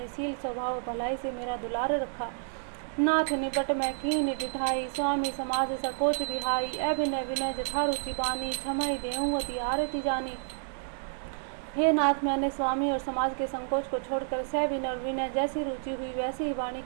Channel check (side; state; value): left; silent; digital silence